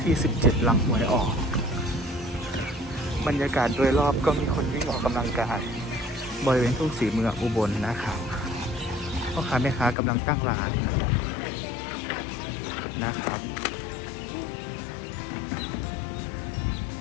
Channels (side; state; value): right; drops out; at 10.0 s